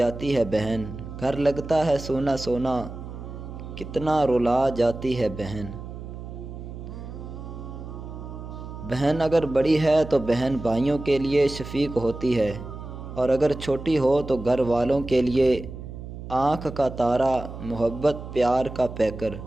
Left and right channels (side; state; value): right; noise; hum, 11 dB below the sound